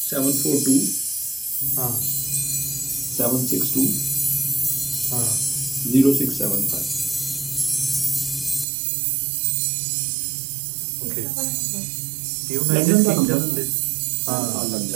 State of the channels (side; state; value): left; drops out; at 8.7 s